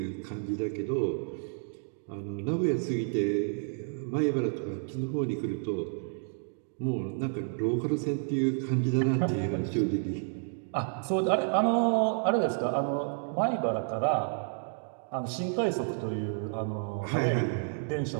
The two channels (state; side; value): silent; left; 57 dB below the other